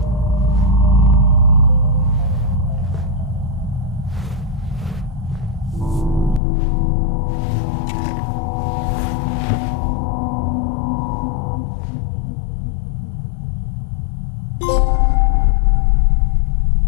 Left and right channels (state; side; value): drops out; right; at 6.4 s